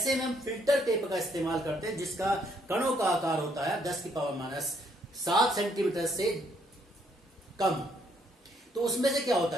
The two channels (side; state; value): both; normal; correlation 0.69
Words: में हम फिल्टर पेपर का इस्तेमाल करते हैं जिसका कणों का आकार होता है 10⁻⁷ सेंटीमीटर से कम। तो उसमें से क्या